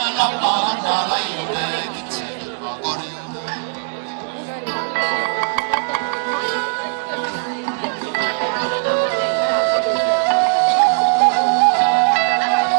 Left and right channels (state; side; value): silent; left; digital silence